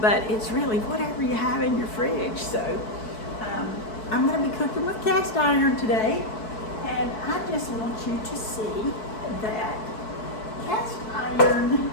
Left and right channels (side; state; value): right; late; 4.6 ms